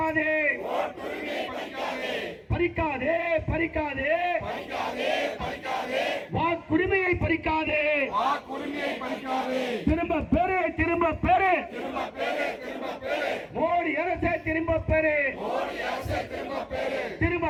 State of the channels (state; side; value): identical; both; correlation 1.00